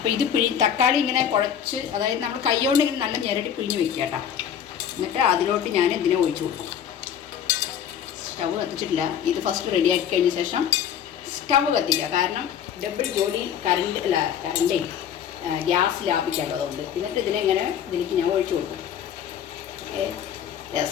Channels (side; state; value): right; quieter; 9.0 dB